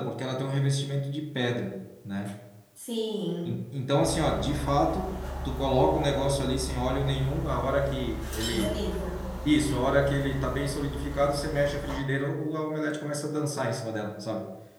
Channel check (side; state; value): both; identical; correlation 1.00